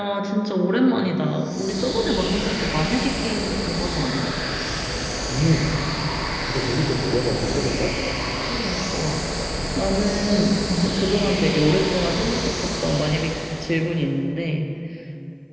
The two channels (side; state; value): both; identical; correlation 1.00